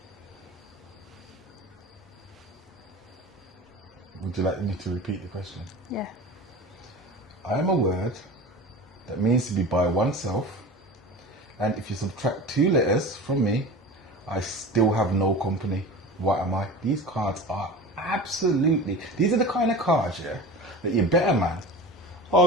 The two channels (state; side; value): normal; both; correlation 0.34